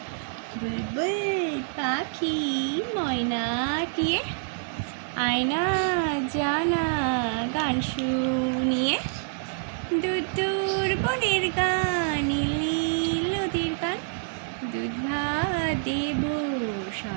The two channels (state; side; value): silent; left; digital silence